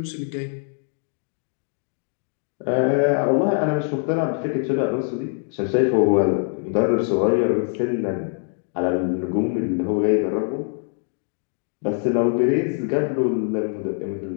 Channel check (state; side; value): silent; right; 63 dB below the other